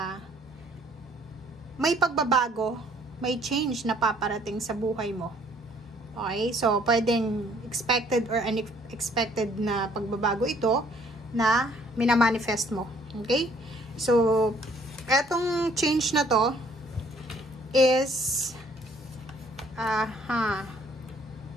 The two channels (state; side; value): normal; both; correlation 0.61